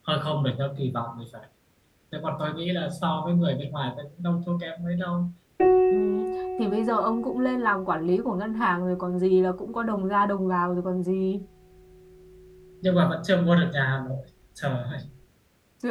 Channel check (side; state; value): both; identical; correlation 1.00